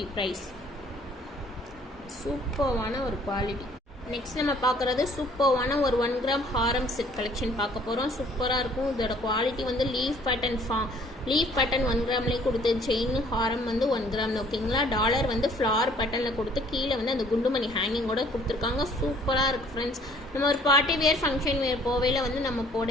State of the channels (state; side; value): normal; both; correlation 0.58